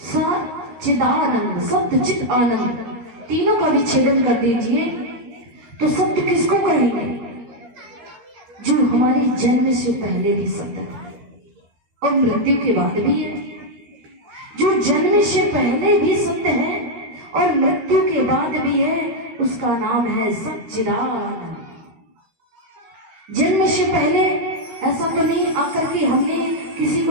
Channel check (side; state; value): left; late; 13 ms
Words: सच्चिदानंद, सत्य चित आनंद, तीनों का विच्छेदन कर दीजिए तो सत्य किसको कहेंगे? जो हमारे जन्म से पहले भी सत्य है और मृत्यु के बाद भी है। जो जन्म से पहले भी सत्य है और मृत्यु के बाद भी है, उसका नाम है सच्चिदानंद। जन्म से पहले ऐसा तो नहीं आकर के हमने किसी